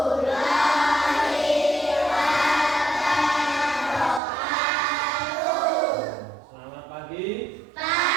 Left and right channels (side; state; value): left; drops out; at 4.2 s